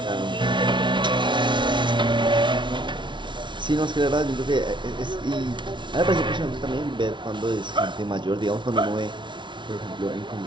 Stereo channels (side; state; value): left; late; 0.23 ms